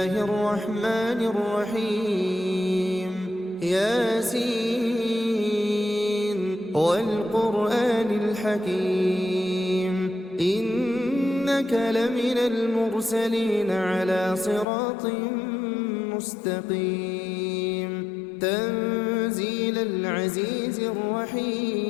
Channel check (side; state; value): right; drops out; at 14.7 s